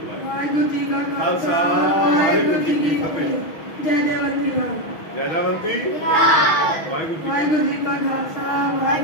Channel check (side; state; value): right; late; 6.1 ms